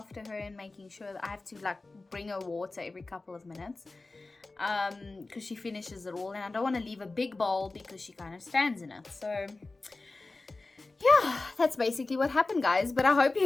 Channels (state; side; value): quieter; right; 3.4 dB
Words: her and making sure that I have to like bring her water every couple of minutes, because she finishes it all, and I don't want to leave a big bowl because she kind of stands in it. So yeah, that's basically what happened, guys. But I hope